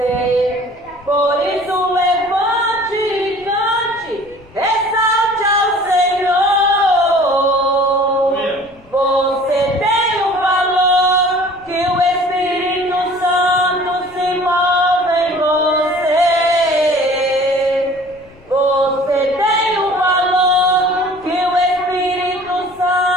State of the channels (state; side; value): noise; left; rumble, 26 dB below the sound